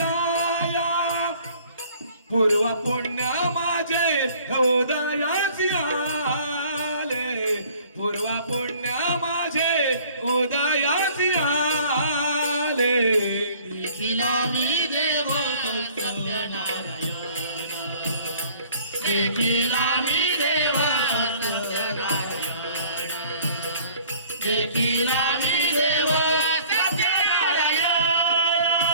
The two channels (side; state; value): both; inverted; correlation -0.53